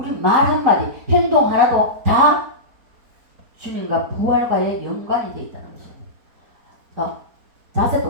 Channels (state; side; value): late; left; 4.3 ms